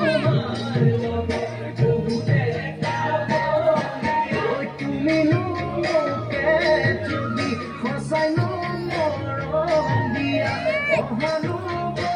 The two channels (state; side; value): identical; both; correlation 1.00